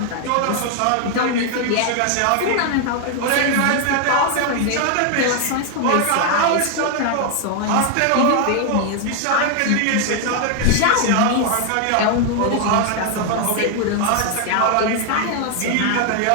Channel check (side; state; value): both; different; correlation 0.00